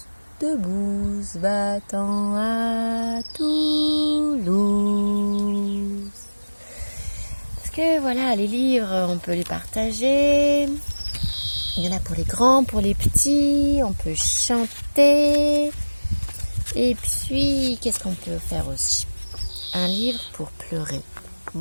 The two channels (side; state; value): both; inverted; correlation -1.00